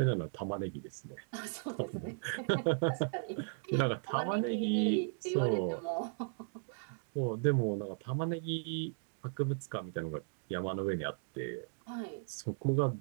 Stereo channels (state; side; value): silent; left; digital silence